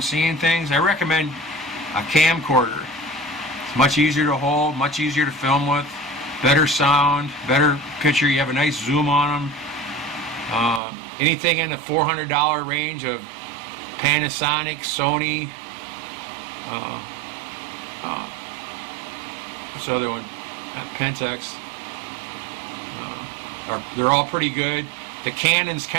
seeing things. I recommend a camcorder. It's much easier to hold, much easier to film with, better sound, better picture. You have a nice zoom on them. Anything in the $400 range of Panasonic, Sony, what's the other one? Pentax. They're all pretty good. The Canons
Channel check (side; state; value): left; drops out; at 10.8 s